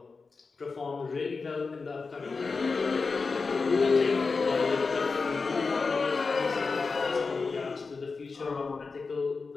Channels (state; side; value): quieter; right; 4.4 dB